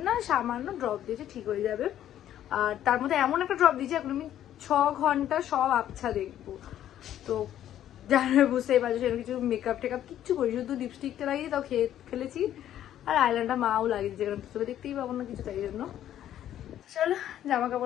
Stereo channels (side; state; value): right; quieter; 11.5 dB